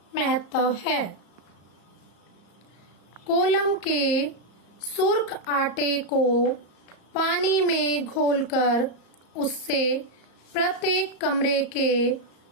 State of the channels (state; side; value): late; right; 34 ms